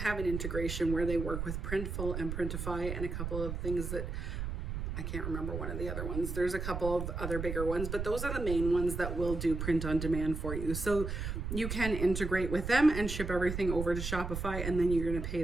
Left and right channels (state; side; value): noise; right; rumble, 4 dB below the sound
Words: an integration where they work with Printful and Printify and a couple of things that I can't remember one of the other ones. There's a couple of other bigger ones, but those are the main ones that will do print on demand for you. So you can integrate with them and ship everything over to Shopify, and then you're going to pay